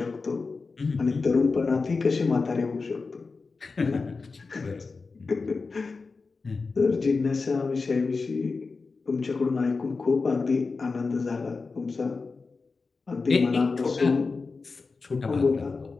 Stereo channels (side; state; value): right; quieter; 4.3 dB